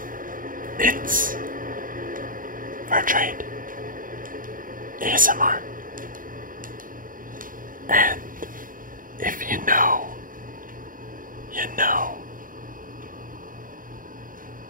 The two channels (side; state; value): left; late; 0.40 ms